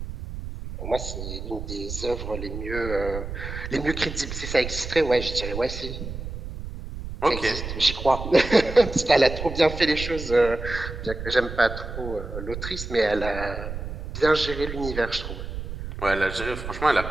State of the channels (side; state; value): right; noise; rumble, 8 dB below the sound